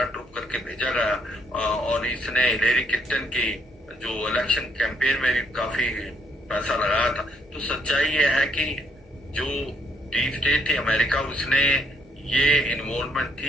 करके भेजा गया और इसने हिलेरी क्लिंटन की जो इलेक्शन कैंपेन में भी काफी पैसा लगाया था। तो सच्चाई ये है कि जो डीप स्टेट थी अमेरिका, उसने ये इन्वॉल्वमेंट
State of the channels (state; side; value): normal; both; correlation 0.70